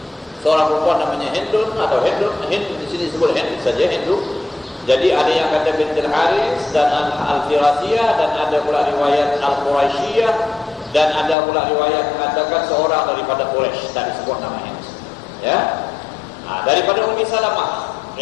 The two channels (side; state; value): right; drops out; at 11.4 s